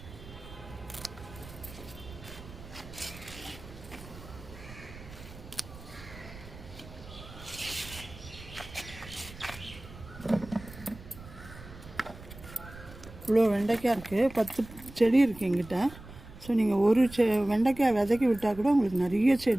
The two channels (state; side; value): noise; right; rumble, 16 dB below the sound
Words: இவ்வளோ வெண்டைக்காய் இருக்குது, 10 செடி இருக்குது எங்கிட்ட. ஸோ நீங்கள் ஒரு வெண்டைக்காய் விதைக்கி விட்டால் கூட உங்களுக்கு நிறைய